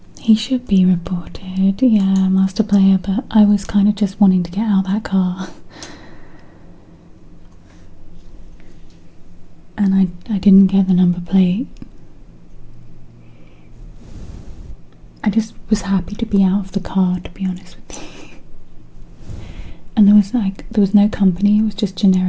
He should be reported, yeah, master player, but I was kind of just wanting to get out of that car. And I didn't get the number plate. I just was happy to be out of the car, to be honest with you. And there was no company, it was just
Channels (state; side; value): identical; both; correlation 1.00